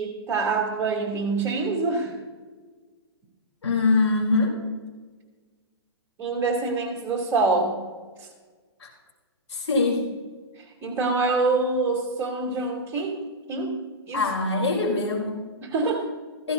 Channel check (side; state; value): both; normal; correlation -0.15